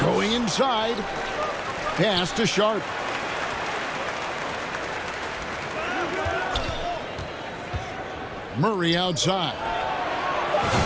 going inside. Pass to Sharp. Murray outside.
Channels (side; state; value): both; identical; correlation 1.00